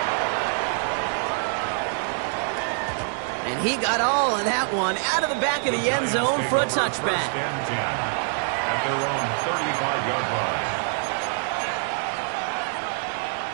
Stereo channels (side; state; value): left; silent; 62 dB below the other